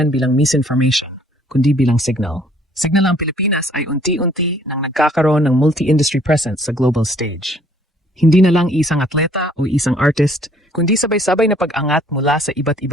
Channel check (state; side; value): normal; both; correlation 0.60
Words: bilang misinformation, kundi bilang signal. Signal ang Pilipinas ay unti-unti nang nagkakaroon ng multi-industry presence sa global stage. Hindi na lang isang atleta o isang artist, kundi sabay-sabay na pag-angat mula sa iba't